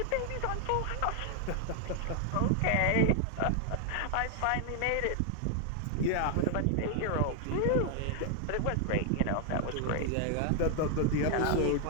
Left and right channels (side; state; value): both; different; correlation 0.00